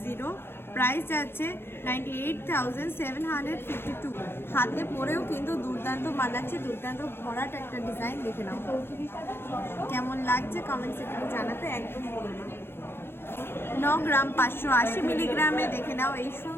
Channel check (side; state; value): right; late; 0.11 ms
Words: প্রাইস যাচ্ছে 98,752। হাতে পরেও কিন্তু দুর্দান্ত মানাচ্ছে, দুর্দান্ত ভরাট একটা ডিজাইন। দেখে নাও কেমন লাগছে কমেন্ট সেকশনে জানাতে একদম ভুলো না। 9 গ্রাম 580 মিলিগ্রামে দেখে নাও এই